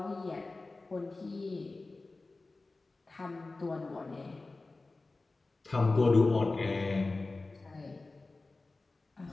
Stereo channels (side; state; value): right; quieter; 3.4 dB